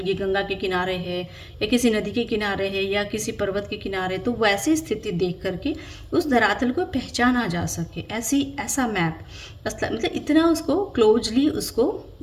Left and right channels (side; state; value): both; identical; correlation 1.00